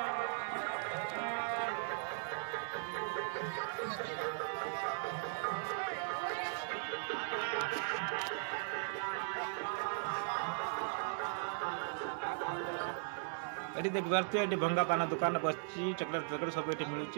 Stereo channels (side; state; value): left; silent; digital silence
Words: ये देख पार्थे ये भंगा पान दुकान बस चॉकलेट पैकेट सब ये